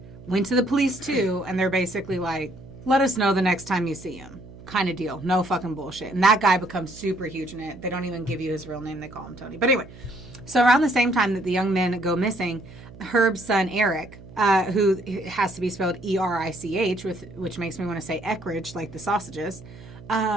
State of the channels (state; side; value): noise; right; hum, 18 dB below the sound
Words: went to the police too. And they're basically like, let us know the next time you see him. Kind of deal. No fucking bullshit. And that guy becomes super huge in it. They don't even give you his real name. They call him Tony. But anyway, so around the same time that the young men go missing, Herb's son, Eric, who has to be spelled E-R-I-C-H, which makes me want to say Eckridge, like the sausages,